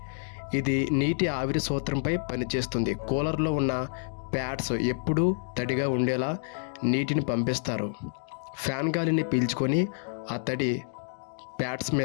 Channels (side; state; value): right; silent; digital silence